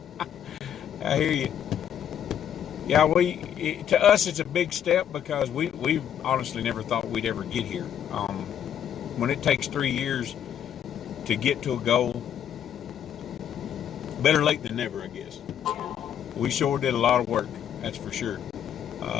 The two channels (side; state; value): right; quieter; 9.5 dB